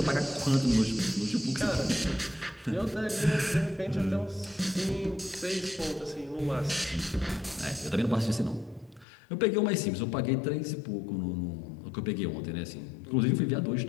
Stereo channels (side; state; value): right; drops out; at 9.1 s